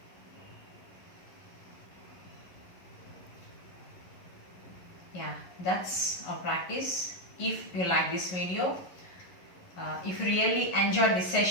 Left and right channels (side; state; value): right; late; 11 ms